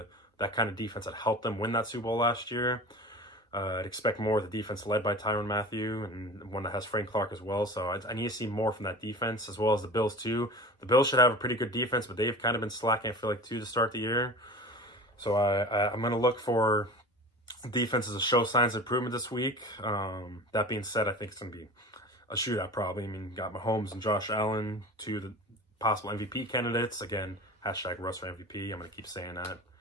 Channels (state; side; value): normal; both; correlation 0.36